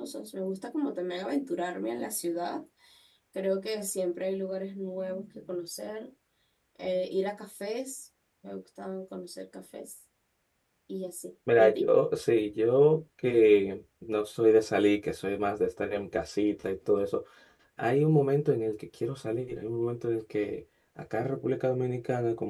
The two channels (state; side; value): identical; both; correlation 1.00